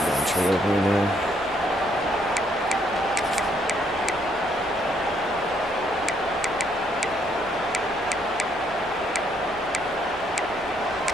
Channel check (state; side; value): normal; both; correlation 0.71